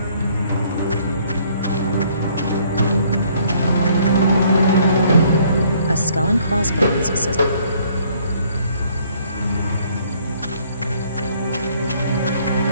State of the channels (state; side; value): inverted; both; correlation -0.63